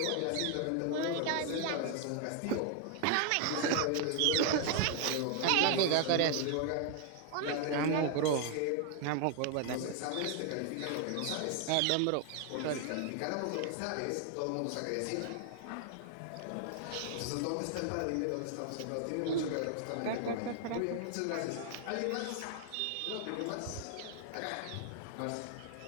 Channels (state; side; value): different; both; correlation 0.00